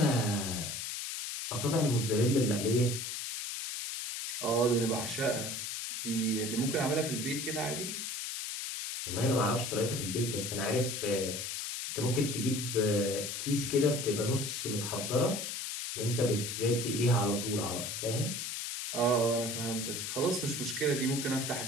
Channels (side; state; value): left; noise; hiss, 4 dB below the sound